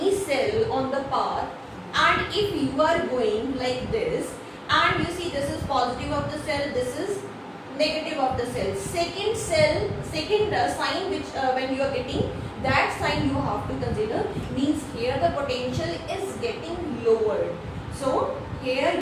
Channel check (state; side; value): identical; both; correlation 1.00